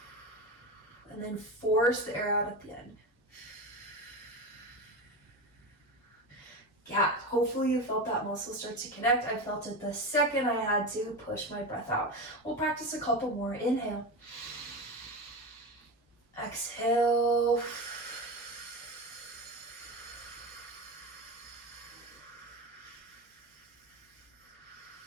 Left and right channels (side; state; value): both; normal; correlation 0.22